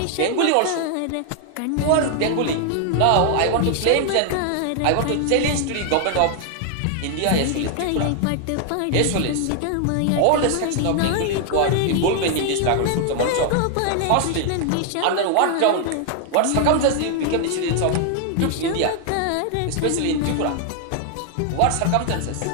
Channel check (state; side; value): different; both; correlation 0.00